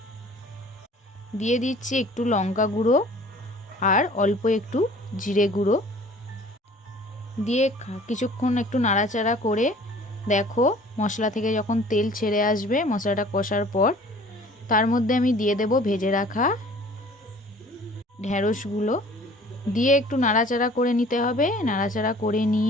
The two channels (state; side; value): normal; both; correlation 0.49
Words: দিয়ে দিচ্ছি, একটু লঙ্কা গুঁড়ো আর অল্প একটু জিরে গুঁড়ো দিয়ে কিছুক্ষণ একটু নাড়াচাড়া করে দেখো, মশলা থেকে যখন তেল ছেড়ে আসবে, মশলাটা কষার পর তার মধ্যে আমি দিয়ে দেব ভেজে রাখা ঢ্যাঁড়সগুলো। দিয়ে একটু নাড়াচাড়া করে নিতে হবে। নাড়াচাড়া করে